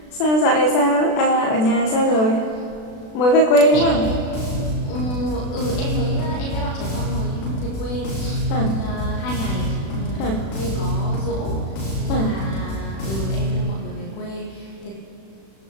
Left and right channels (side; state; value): right; late; 36 ms